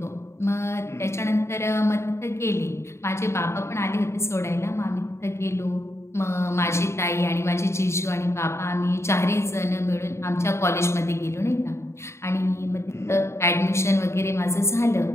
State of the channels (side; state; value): right; late; 0.13 ms